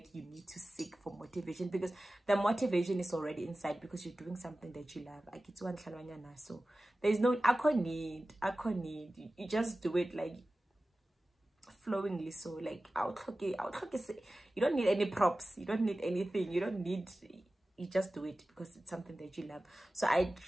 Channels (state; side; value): normal; both; correlation 0.96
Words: you need to seek for motivation, because the motivation is already inside, because you're doing something that you love. So there's no need. You just do it like flowingly. So like you don't need any props, you don't need anything, you just do it because it's something that you love. So I